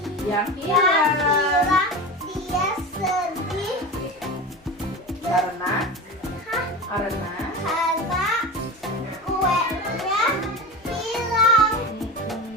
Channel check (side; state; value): both; normal; correlation 0.27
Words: Yang yang hilang dia sedih karena karena kuenya hilang.